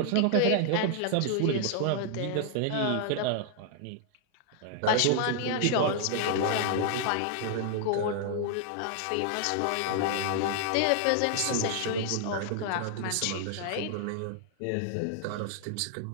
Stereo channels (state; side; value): different; both; correlation -0.01